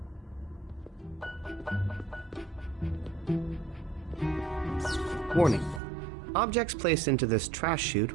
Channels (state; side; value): drops out; left; at 5.8 s